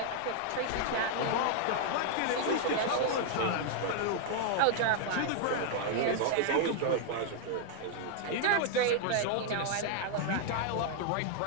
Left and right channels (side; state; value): both; different; correlation 0.00